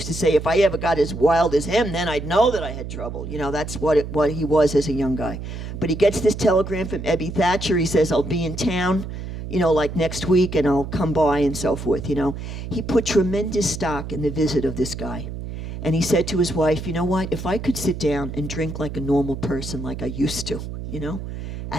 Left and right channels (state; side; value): noise; right; hum, 8 dB below the sound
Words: to say, if I ever got as wild as him, then I'd know that I had trouble. That's what he was as a young guy. But he gets this telegram from Ebby Thatcher. He says, I'll be in town, like next week, and I'll come by and so forth, He put tremendous stock in the visit of this guy. And he said to his wife, you know what, if I could sit down and drink like a normal person like I used to,